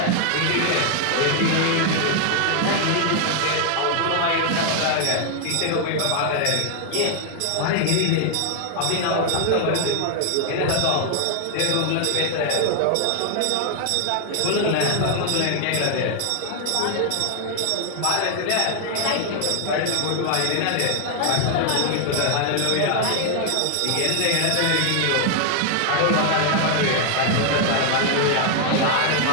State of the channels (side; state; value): both; different; correlation 0.00